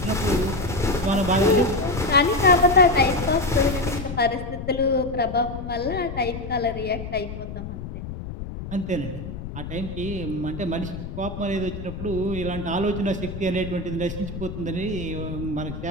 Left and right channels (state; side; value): noise; left; rumble, 9 dB below the sound